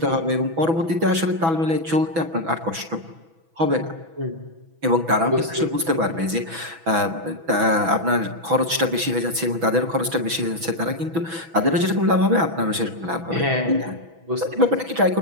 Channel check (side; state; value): left; late; 6.1 ms